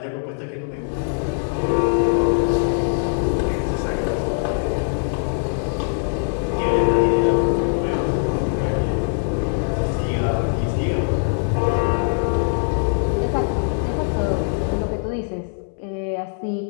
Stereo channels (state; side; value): silent; right; 64 dB below the other